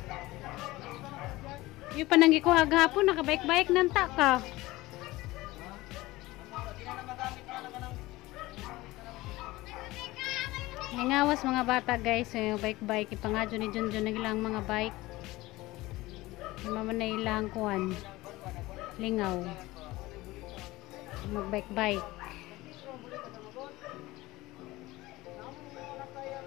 Yung pananggi ko agapon nakabike-bike nang ta ka. Nangawas mga bata guys, so yung bike-bike ipangadyo ni Junjun nagilang mga bike. Maman na ilang kuan. Lingaw. Mag-bike-bike.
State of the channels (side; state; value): right; quieter; 19.3 dB